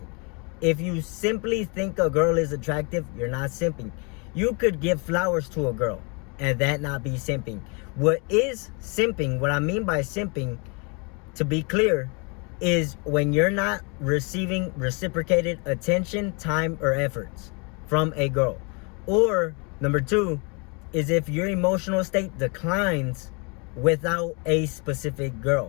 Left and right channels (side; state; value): right; quieter; 32.8 dB